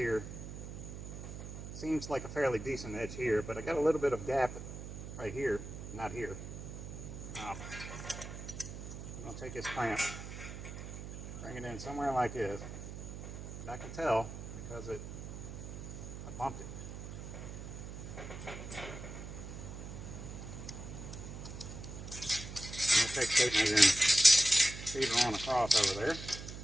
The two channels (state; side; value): noise; right; hum, 9 dB below the sound